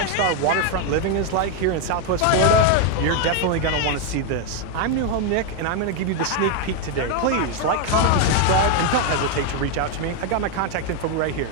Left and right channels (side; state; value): both; different; correlation 0.01